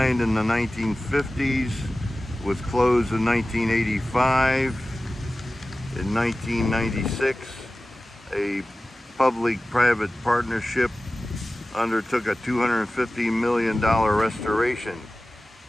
in the 1950s, was closed in 1985. In 1996, a public-private partnership undertook a $250 million restoration.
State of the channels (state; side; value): normal; both; correlation 0.96